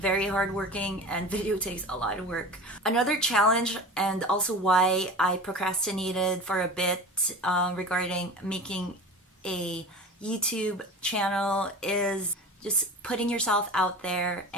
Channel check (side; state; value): both; normal; correlation 0.34